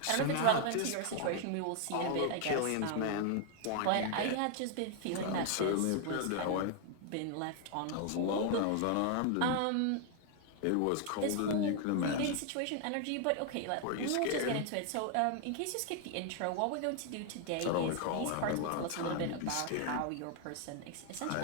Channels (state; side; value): different; both; correlation 0.00